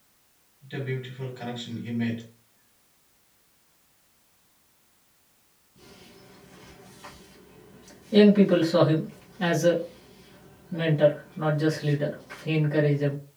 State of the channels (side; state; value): both; identical; correlation 1.00